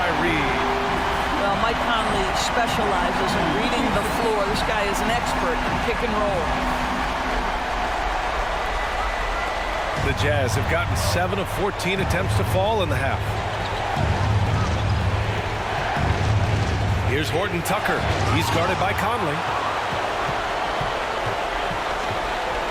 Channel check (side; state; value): both; identical; correlation 1.00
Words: Reed. Well, Mike Conley specializes in reading the floor. This guy is an expert in pick and roll. The Jazz have gotten 7 of 14 attempts to fall in the half. Here's Horton Tucker. He's guarded by Conley.